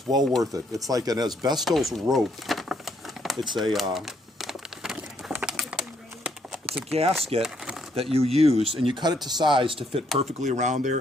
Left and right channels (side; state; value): both; normal; correlation 0.71